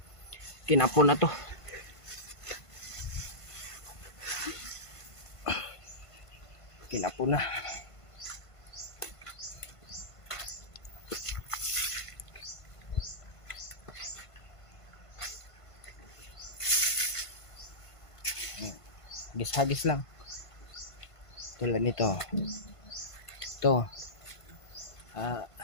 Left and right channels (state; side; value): late; right; 1.5 ms